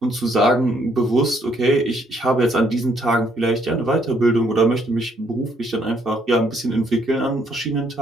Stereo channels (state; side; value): normal; both; correlation 0.69